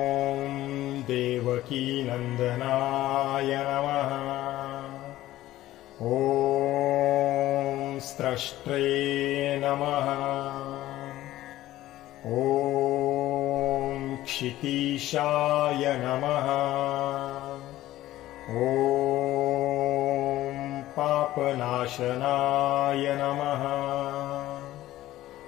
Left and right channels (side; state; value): right; quieter; 15.1 dB